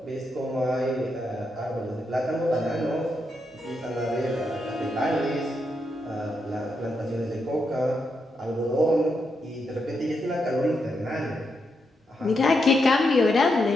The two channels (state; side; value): normal; both; correlation 0.82